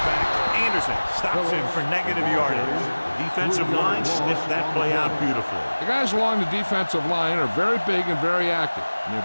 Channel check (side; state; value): both; inverted; correlation -1.00